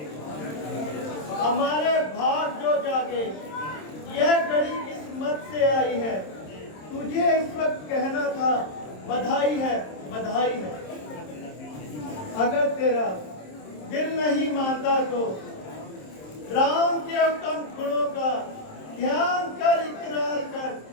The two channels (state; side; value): late; right; 27 ms